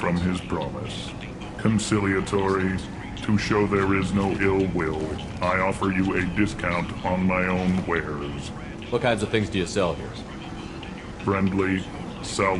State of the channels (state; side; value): identical; both; correlation 1.00